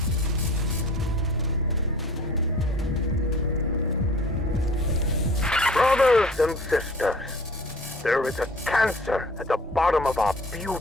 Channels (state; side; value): normal; both; correlation 0.47